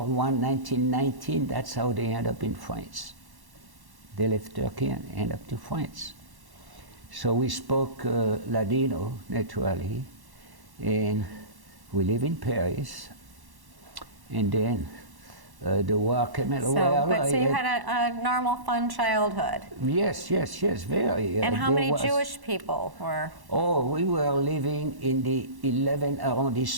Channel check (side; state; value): left; late; 1.1 ms